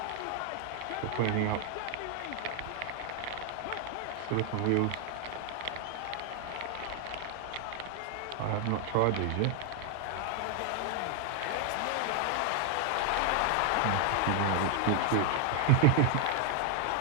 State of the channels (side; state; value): both; different; correlation 0.00